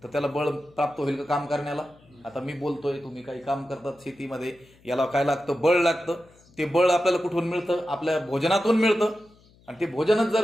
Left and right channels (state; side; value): noise; left; hum, 29 dB below the sound